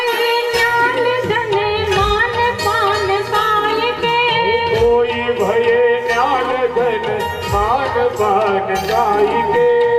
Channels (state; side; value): identical; both; correlation 1.00